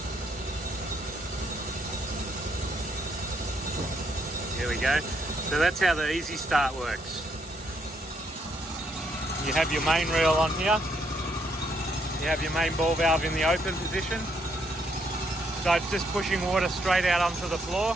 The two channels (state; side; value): normal; both; correlation 0.73